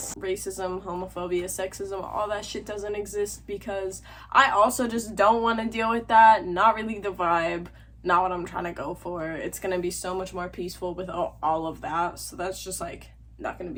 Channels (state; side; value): identical; both; correlation 1.00